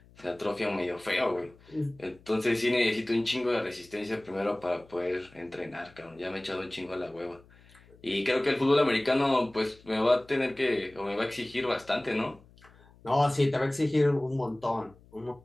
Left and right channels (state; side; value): noise; left; hum, 26 dB below the sound